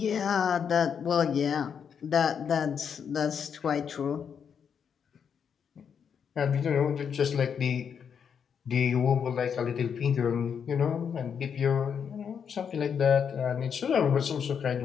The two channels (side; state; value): right; quieter; 7.2 dB